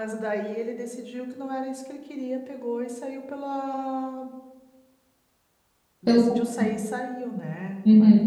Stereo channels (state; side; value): identical; both; correlation 1.00